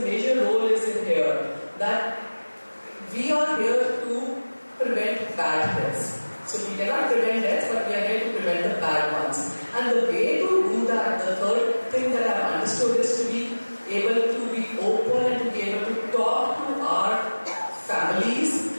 major role is in here, that we are here to prevent bad deaths. So we cannot prevent deaths, but we are here to prevent the bad ones. And the way to do that, the third thing that I've understood is to be able to be open and to be able to talk to our families,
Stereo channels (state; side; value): inverted; both; correlation -1.00